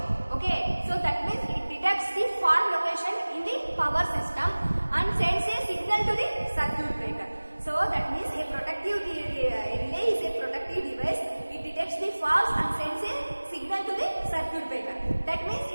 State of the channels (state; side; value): inverted; both; correlation -1.00